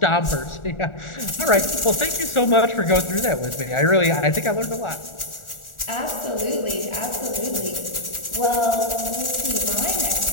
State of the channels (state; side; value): late; right; 1.4 ms